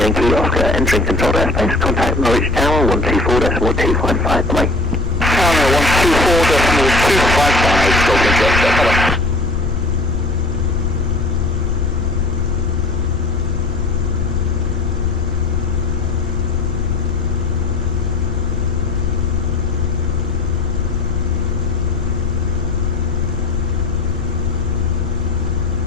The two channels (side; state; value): left; noise; rumble, 4 dB below the sound